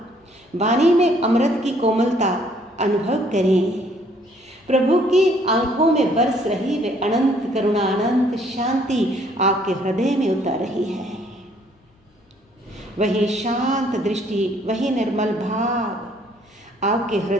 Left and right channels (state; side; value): normal; both; correlation 0.63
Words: वाणी में अमृत की कोमलता अनुभव करें। प्रभु की आंखों में बरस रही वे अनंत करुणा, अनंत शांति आपके हृदय में उतर रही है। वही शांत दृष्टि, वही निर्मल भाव आपके